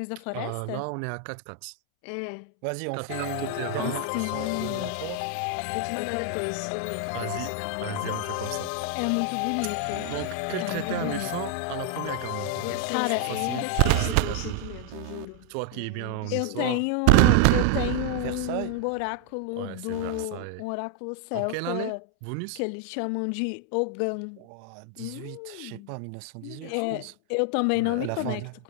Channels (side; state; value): both; different; correlation 0.00